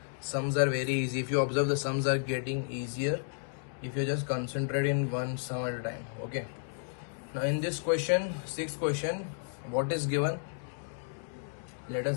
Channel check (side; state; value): right; silent; digital silence